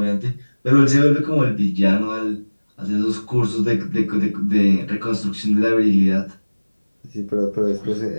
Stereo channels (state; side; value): inverted; both; correlation -1.00